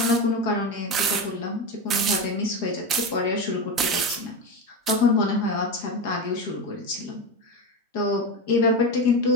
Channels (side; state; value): both; normal; correlation 0.18